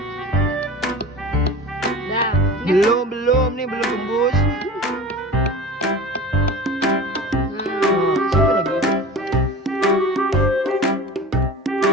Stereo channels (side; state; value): both; normal; correlation 0.36